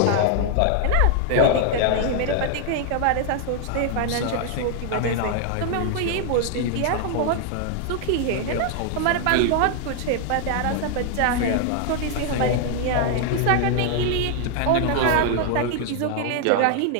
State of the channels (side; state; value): both; different; correlation 0.00